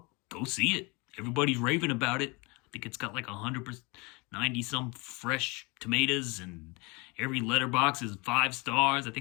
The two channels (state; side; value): quieter; right; 27.6 dB